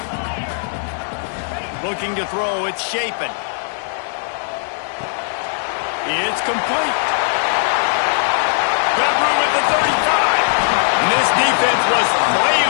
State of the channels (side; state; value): right; silent; digital silence